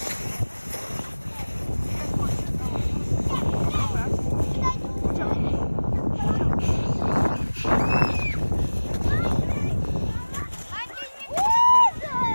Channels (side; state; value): both; inverted; correlation -1.00